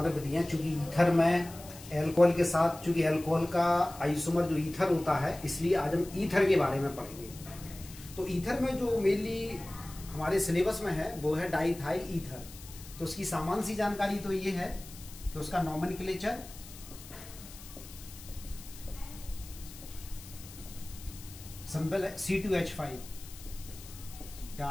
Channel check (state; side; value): noise; left; hiss, 17 dB below the sound